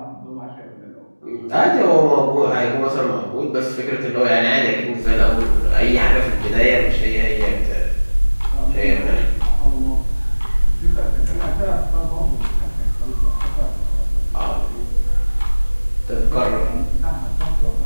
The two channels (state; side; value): inverted; both; correlation -1.00